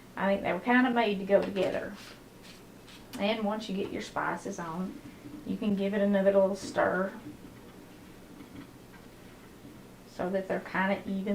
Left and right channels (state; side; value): identical; both; correlation 1.00